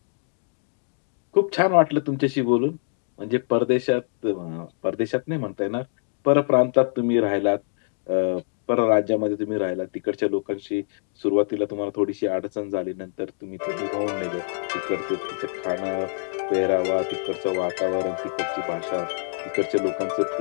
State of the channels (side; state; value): right; silent; digital silence